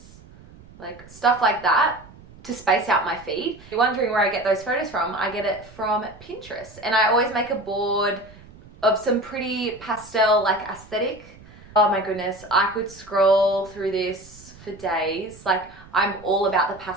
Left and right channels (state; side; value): noise; right; rumble, 21 dB below the sound